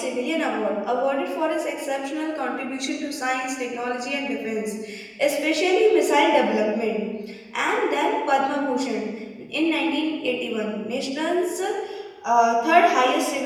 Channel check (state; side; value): identical; both; correlation 1.00